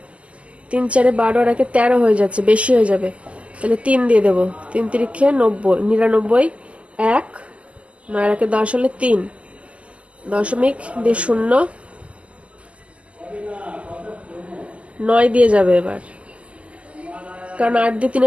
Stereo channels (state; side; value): late; left; 0.060 ms